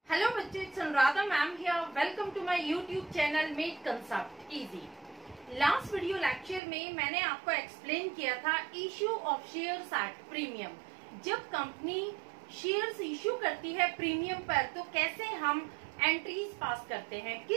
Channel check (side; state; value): left; drops out; at 6.6 s